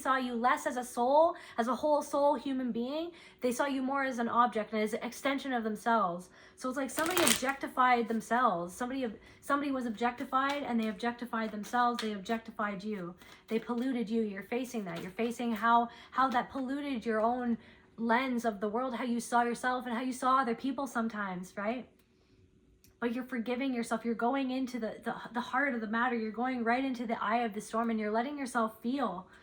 you less as a soul, as a whole soul human being. They saw you more as an object and as an extension of themselves. So it's like somebody objectified themselves. Somebody was objectified, and they objectified themselves. They objectified you. They polluted you. You're facing that. You're facing how that polluted your own lens of the world, how you saw yourself and how you saw other people sometimes, right? But you're forgiving yourself. You're going into the heart of the matter. You're going right into the eye of the storm, and you're letting yourself feel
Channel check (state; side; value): identical; both; correlation 1.00